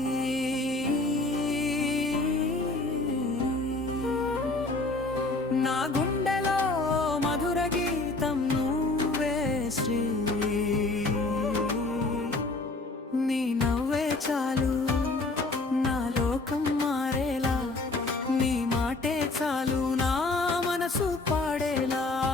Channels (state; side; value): quieter; right; 3.2 dB